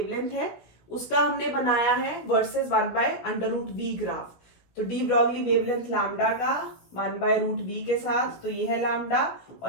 है उसका हमने बनाया है versus 1 by under root v graph. तो डी ब्रॉगली वेवलेंथ लैम्डा का 1 बाय रूट वी के साथ, तो ये है लैम्डा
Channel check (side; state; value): right; late; 17 ms